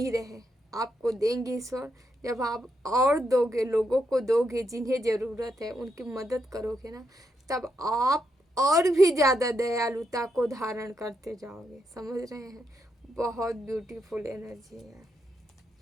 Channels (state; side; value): normal; both; correlation 0.81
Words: रहे। आपको देंगे ईश्वर, जब आप और दोगे, लोगों को दोगे जिन्हें ज़रूरत है, उनकी मदद करोगे ना, तब आप और भी ज़्यादा दयालुता को धारण करते जाओगे। समझ रहे हैं? बहुत ब्यूटीफुल एनर्जी है।